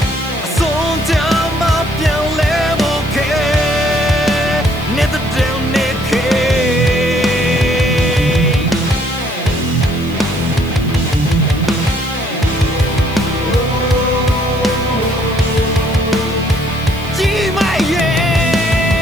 အဆုံးကြမှာပြန်လဲဖို့ခဲ့နေတဲ့တဲ့နေခဲ့ကြီးမရဲ့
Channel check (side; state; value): right; noise; hiss, 21 dB below the sound